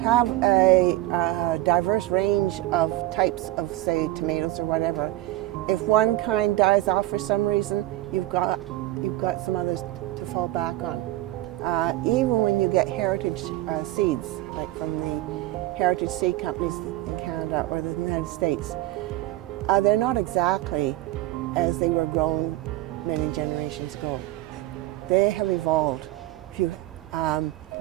a diverse range of types of, say, tomatoes or whatever, if one kind dies off for some reason, you've got some others to fall back on. Even when you get heritage seeds, like from the heritage seed companies in Canada or the United States, they're not exactly as they were grown many generations ago. They have evolved.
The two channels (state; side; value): quieter; left; 16.7 dB